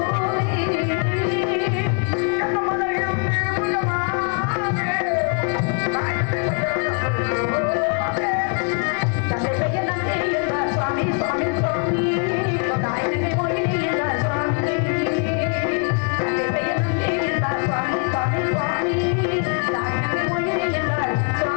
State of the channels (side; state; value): right; quieter; 38.6 dB